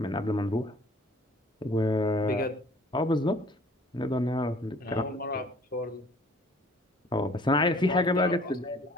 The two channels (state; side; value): normal; both; correlation 0.53